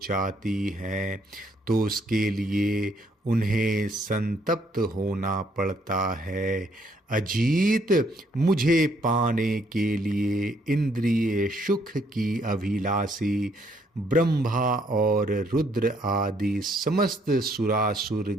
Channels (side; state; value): both; normal; correlation 0.68